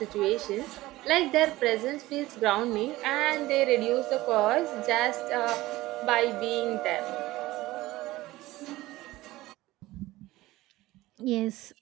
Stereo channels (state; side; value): quieter; left; 17.9 dB